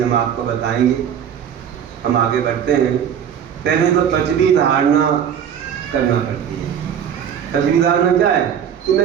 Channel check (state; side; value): quieter; left; 8.6 dB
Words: आपको बताएंगे, हम आगे बढ़ते हैं। पहले तो पृथ्वी धारणा करना पड़ती है। पृथ्वी धारणा क्या है कि